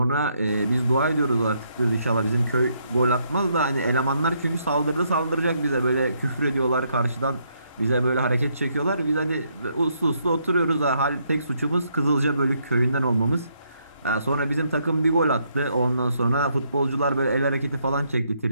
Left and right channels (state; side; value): inverted; both; correlation -0.74